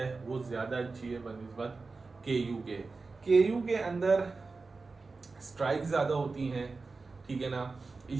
वो ज्यादा अच्छी है बनिस्बत केयू के। केयू के अंदर स्ट्राइक ज्यादा होती हैं, ठीक है ना,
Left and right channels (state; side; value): quieter; left; 4.0 dB